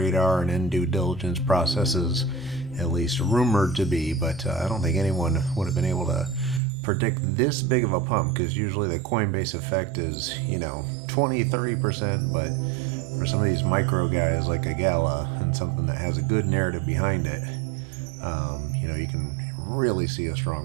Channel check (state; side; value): drops out; left; at 6.6 s